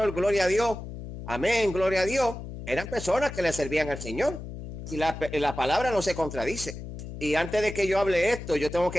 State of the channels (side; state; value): left; noise; hum, 10 dB below the sound